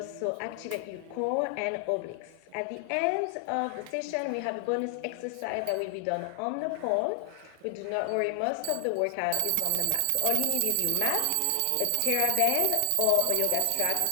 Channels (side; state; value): both; different; correlation 0.00